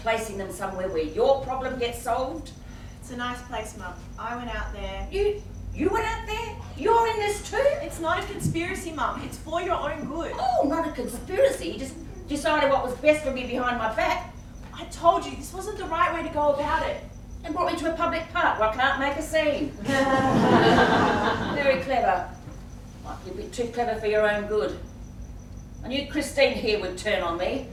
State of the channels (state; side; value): identical; both; correlation 1.00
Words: placing them somewhere where your problem gets solved? It's a nice place, Mum. I went out there. You went out there? You're in this too? It's not a conspiracy, Mum. It's for your own good. Oh, not a conspiracy. You just decided what was best for me behind my back I told you, this wasn't the right way to go about it. and brought me to a public park where I can't make a scene. Very clever. Might be a bit too clever for your own good. I knew Christine here would turn on me,